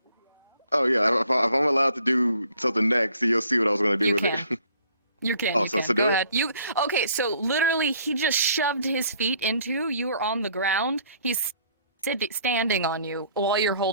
Oh yeah, if I'm allowed to do something next, you'll see what I was gonna do with it. You can. Oh, you so can. do Go it? ahead. Okay? So literally, he just shoved his feet into you. Were on the ground. He's standing on you while you're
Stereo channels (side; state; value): both; inverted; correlation -0.60